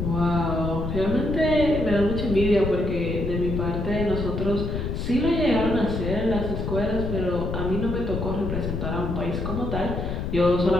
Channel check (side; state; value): left; noise; rumble, 3 dB below the sound